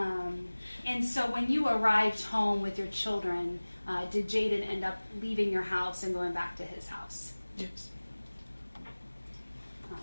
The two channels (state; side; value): inverted; both; correlation -1.00